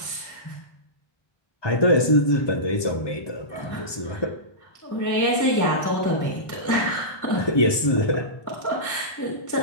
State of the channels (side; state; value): right; late; 1.2 ms